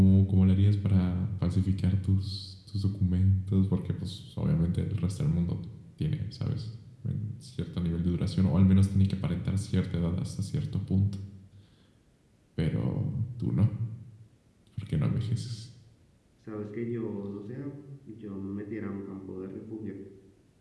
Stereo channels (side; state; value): both; identical; correlation 1.00